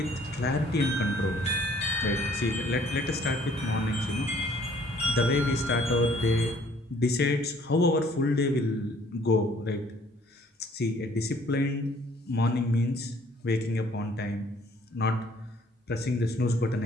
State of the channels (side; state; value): both; normal; correlation 0.59